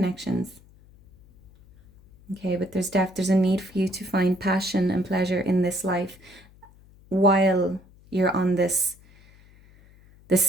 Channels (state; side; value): noise; left; hum, 26 dB below the sound